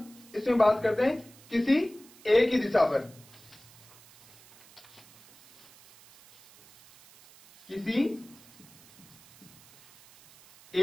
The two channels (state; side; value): noise; right; hiss, 24 dB below the sound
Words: इसमें बात करते हैं किसी एक ही दिशा पर, किसी